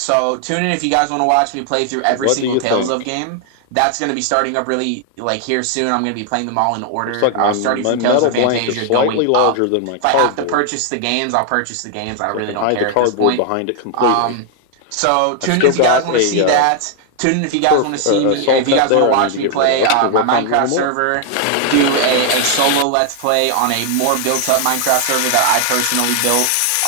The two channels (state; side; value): different; both; correlation 0.00